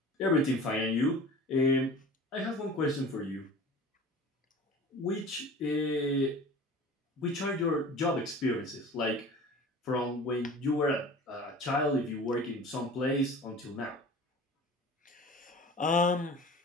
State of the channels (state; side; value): normal; both; correlation 0.40